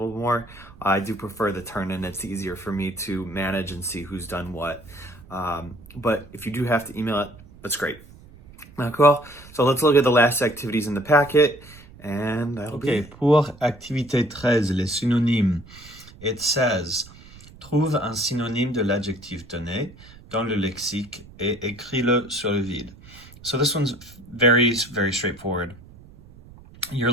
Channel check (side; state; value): right; noise; rumble, 21 dB below the sound